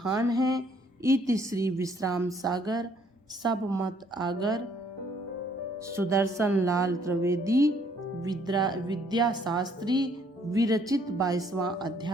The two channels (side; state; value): both; normal; correlation 0.64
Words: है। इति श्री विश्राम सागर सब मत आगर सुदर्शन लाल त्रिवेदी विद्या शास्त्री विरचित 22वां